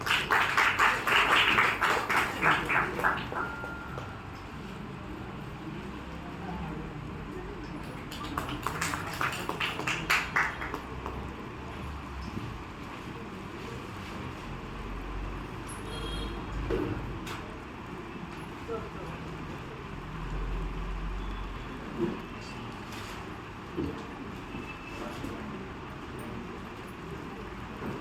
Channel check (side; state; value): both; identical; correlation 1.00